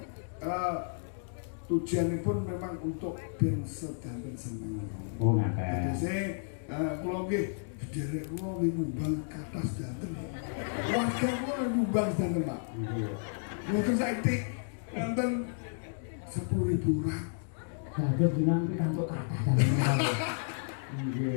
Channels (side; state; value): right; silent; digital silence